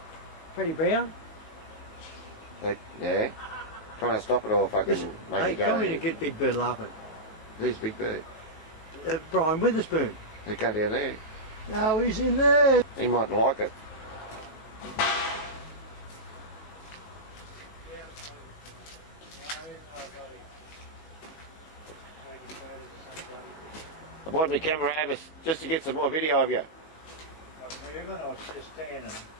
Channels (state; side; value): late; right; 19 ms